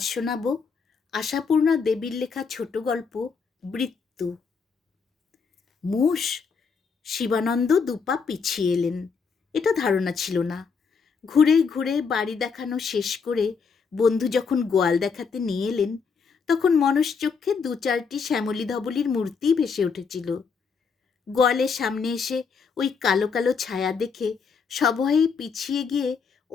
শোনাব আশাপূর্ণা দেবীর লেখা ছোট গল্প বৃত্ত। মোষ। শিবানন্দ দুপা পিছিয়ে এলেন। এটা ধারণা ছিল না। ঘুরে ঘুরে বাড়ি দেখানো শেষ করে বন্ধু যখন গোয়াল দেখাতে নিয়ে এলেন, তখন মনশ্চক্ষে দু চারটি শ্যামলী ধবলীর মূর্তি ভেসে উঠেছিল। গোয়ালের সামনে এসে ওই কালো কালো ছায়া দেখে সভয়ে পিছিয়ে গিয়ে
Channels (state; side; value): quieter; right; 5.5 dB